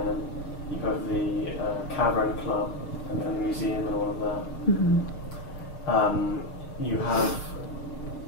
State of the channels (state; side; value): late; right; 6.6 ms